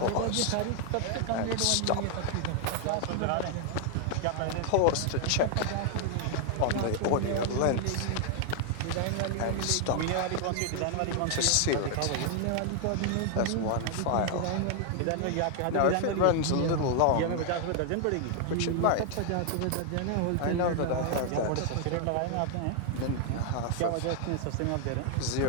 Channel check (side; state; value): both; different; correlation 0.00